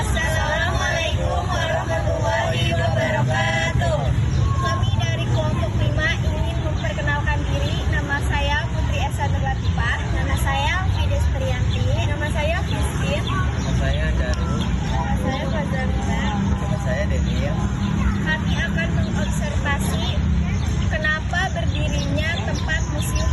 warahmatullahi wabarakatuh. Kami dari kelompok 5 ingin memperkenalkan diri. Nama saya Putri Esa Latifah. Nama saya Fides Trianti. Nama saya Christine. Nama saya Daru. Nama saya Fazalina. Nama saya Denil. Kami akan mengobservasi kenapa berdirinya tempat Museum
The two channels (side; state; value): both; identical; correlation 1.00